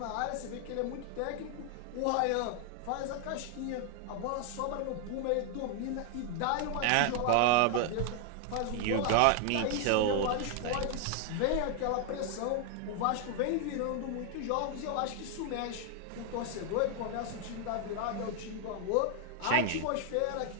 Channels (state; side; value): different; both; correlation 0.00